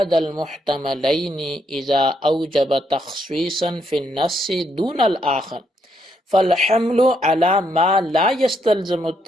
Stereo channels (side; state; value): both; normal; correlation 0.75